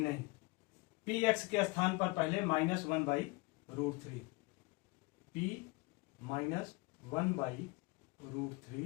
नहीं। पी एक्स के स्थान पर पहले -1 बाई √3, पी -1 बाई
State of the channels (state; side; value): quieter; right; 24.5 dB